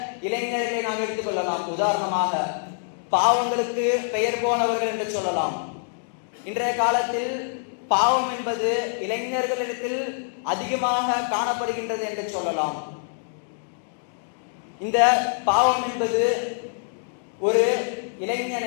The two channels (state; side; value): silent; right; digital silence